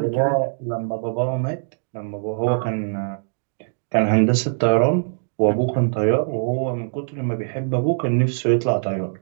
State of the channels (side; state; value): left; silent; digital silence